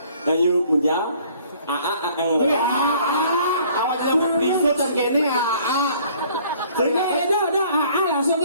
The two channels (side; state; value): both; inverted; correlation -0.57